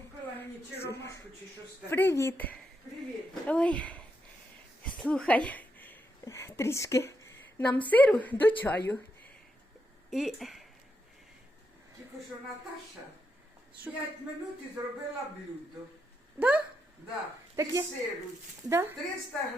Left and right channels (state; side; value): normal; both; correlation 0.82